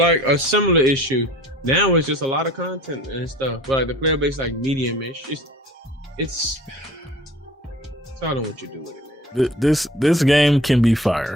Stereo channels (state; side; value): normal; both; correlation 0.47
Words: a similar issue. Now it's just a lot of content and stuff, but like the player base like medium-ish. It's I don't know what you do with it, man. This game can be